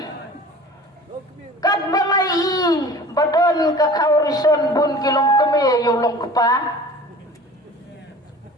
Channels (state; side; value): normal; both; correlation 0.43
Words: Kat balai badan kakaurison bun kilang kami ya yulong kepa.